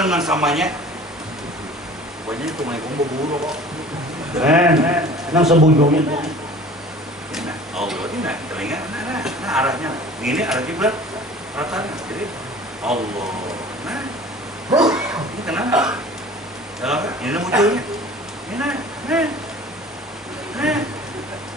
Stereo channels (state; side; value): normal; both; correlation 0.44